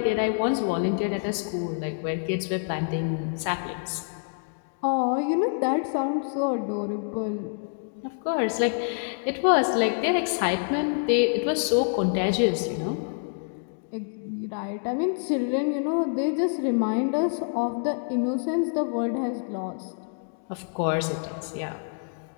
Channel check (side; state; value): right; silent; digital silence